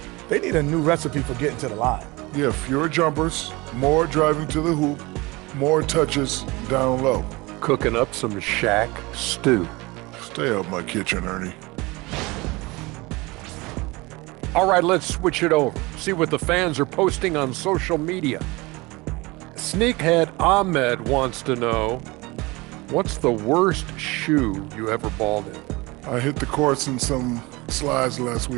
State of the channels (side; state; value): left; quieter; 23.4 dB